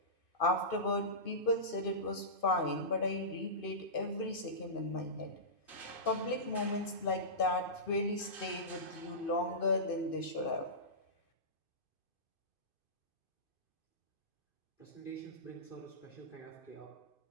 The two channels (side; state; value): right; late; 2.5 ms